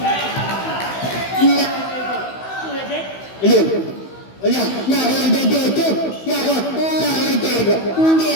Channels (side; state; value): right; late; 16 ms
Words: Ilan? Wala. Nakakadagdato. Nakakadagdato. Hindi